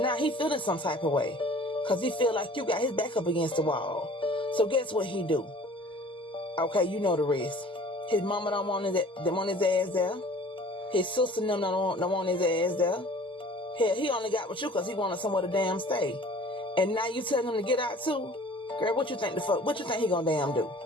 he feeling some type of way. Because he feel like you got his back up against the wall. So guess what he do? Okay, you know the rest. His mama don't want his ass there. His sister don't want his ass there. Hell, he only got with you because he wanted somewhere to damn stay. And now you telling him to get out too? Girl, what you think he gonna damn do?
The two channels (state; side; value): normal; both; correlation 0.49